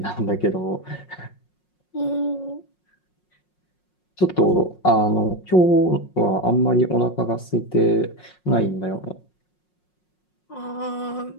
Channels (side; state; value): right; late; 5.5 ms